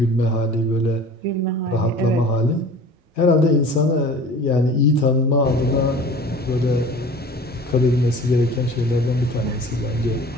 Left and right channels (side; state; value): both; normal; correlation 0.43